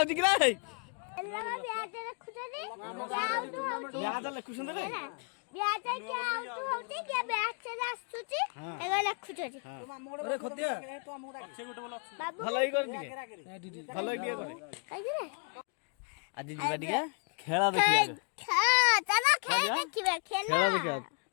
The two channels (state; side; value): quieter; right; 39.3 dB